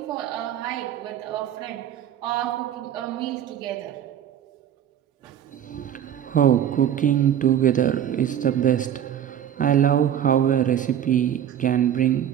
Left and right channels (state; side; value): quieter; left; 10.0 dB